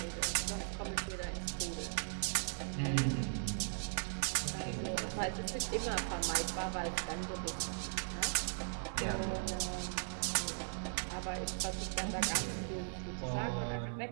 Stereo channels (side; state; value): left; silent; 52 dB below the other